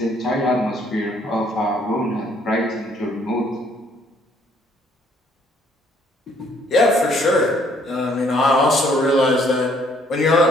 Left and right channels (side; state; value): both; normal; correlation 0.64